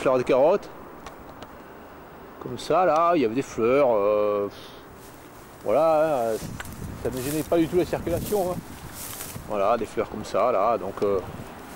de carottes. Comme ça là, il y avait des fleurs. Voilà, ça ne gênait pas du tout la circulation. Hein. Voilà, des fleurs comme ça là, donc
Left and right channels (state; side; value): identical; both; correlation 1.00